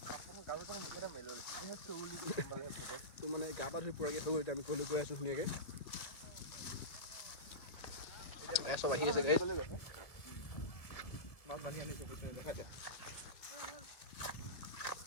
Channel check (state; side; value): late; right; 1.8 ms